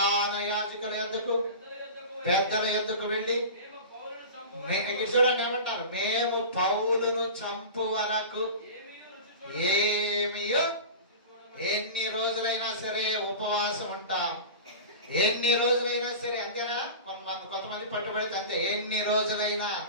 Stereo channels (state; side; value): inverted; both; correlation -0.33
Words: యాజకుల యొద్దకు, పెద్దల యొద్దకు వెళ్ళి చూడండి ఏమంటారు? మేము పౌలును చంపు వరకు ఏమియో, ఎన్ని రోజులైనా సరే ఉపవాసం ఉంటాం, ఎన్ని రోజులైనా సరే. అంతేనా? కొంతమంది పట్టుబడితే అంతే. ఎన్ని రోజులైనా,